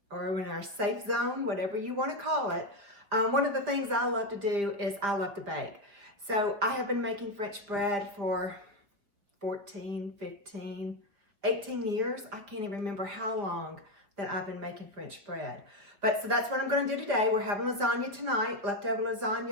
or in our safe zone, whatever you want to call it? One of the things I love to do is I love to bake. So I have been making French bread for 14, 15, 18 years. I can't even remember how long that I've been making French bread. So that's what I'm going to do today. We're having lasagna tonight, leftover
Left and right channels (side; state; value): left; late; 5.0 ms